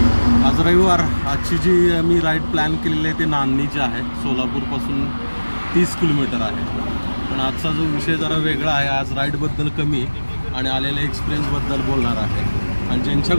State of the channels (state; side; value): inverted; both; correlation -1.00